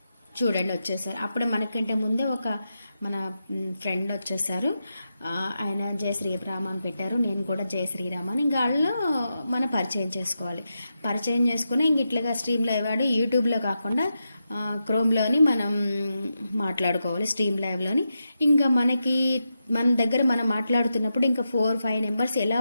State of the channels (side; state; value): both; inverted; correlation -0.87